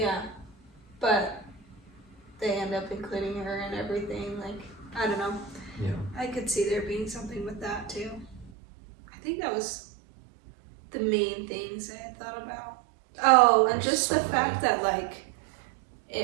But they end up including her in everything. Like, I don't know. Yeah. I could see there being something with that, too. I think that was the main things I had thought about. Oh, and just the fact that, like,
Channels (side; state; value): left; drops out; at 8.5 s